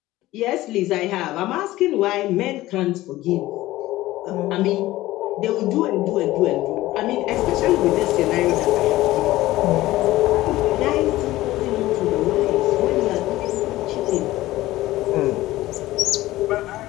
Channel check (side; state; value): right; quieter; 16.8 dB